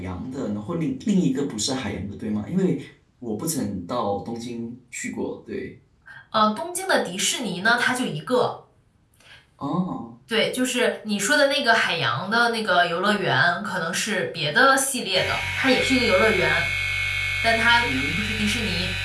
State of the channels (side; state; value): both; identical; correlation 1.00